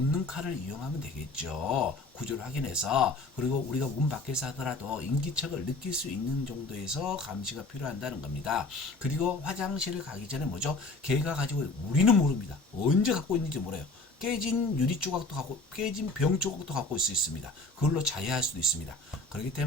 칼을 이용하면 되겠죠. 구조를 확인해서. 그리고 우리가 문 밖에서 하더라도 인기척을 느낄 수 있는 정도에서 감시가 필요한다는 겁니다. 그리고 화장실을 가기 전에 뭐죠? 걔가 가지고 우리는 모릅니다. 언제 갖고 있는지 몰라요. 깨진 유리 조각도 갖고 깨진 병 조각도 갖고 있을 수 있습니다. 그걸로 자해할 수도 있습니다. 그렇기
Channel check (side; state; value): right; quieter; 3.1 dB